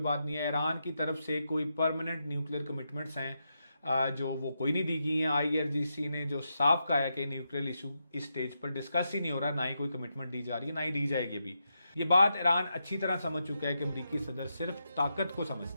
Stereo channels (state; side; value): inverted; both; correlation -0.85